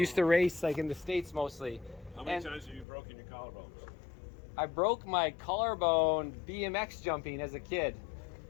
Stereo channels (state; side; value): drops out; right; at 2.9 s